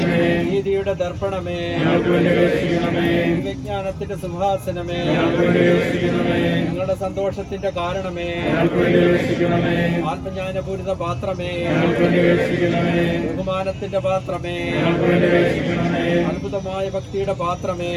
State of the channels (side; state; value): both; identical; correlation 1.00